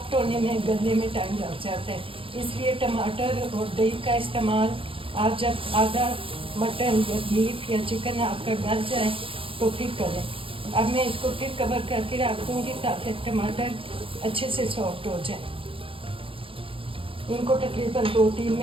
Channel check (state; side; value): late; left; 0.26 ms